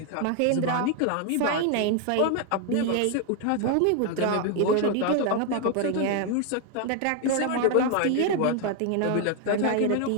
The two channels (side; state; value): both; different; correlation 0.01